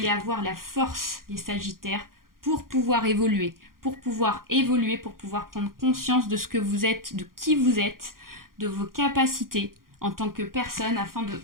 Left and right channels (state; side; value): late; left; 0.91 ms